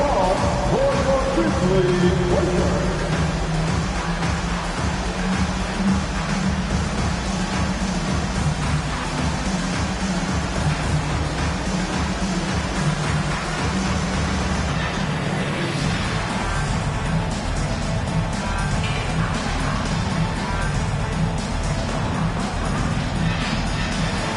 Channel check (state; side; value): identical; both; correlation 1.00